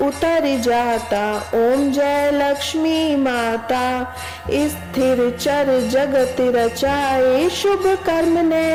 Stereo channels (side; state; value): both; identical; correlation 1.00